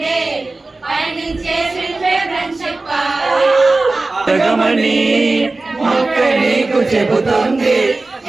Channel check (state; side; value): quieter; left; 3.3 dB